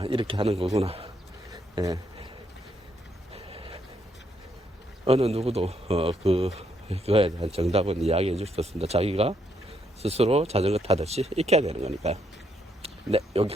이렇게 하는 거구나. 예, 어느 누구도 그거에 대한 정답은 이야기해 줄 수 없습니다. 자기가 스스로 자전거 타듯이 익혀야 되는 거니까요. 네,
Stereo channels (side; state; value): both; normal; correlation 0.75